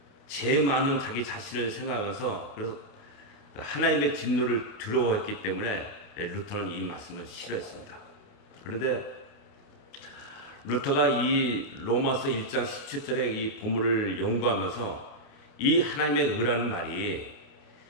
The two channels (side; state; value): right; late; 29 ms